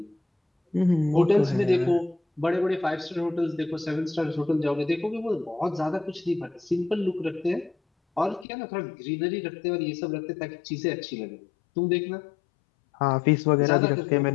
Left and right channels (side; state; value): right; drops out; at 8.5 s